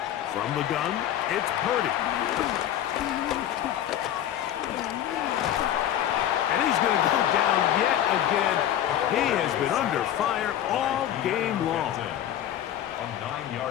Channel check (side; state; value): right; quieter; 11.3 dB